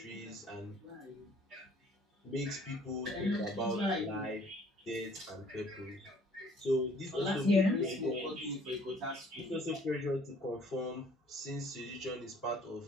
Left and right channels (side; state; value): both; normal; correlation 0.57